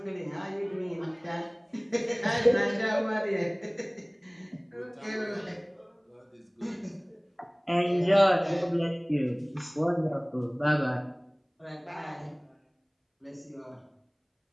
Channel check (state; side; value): identical; both; correlation 1.00